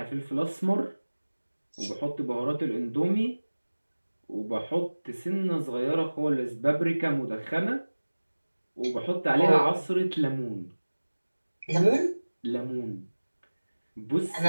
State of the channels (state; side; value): inverted; both; correlation -1.00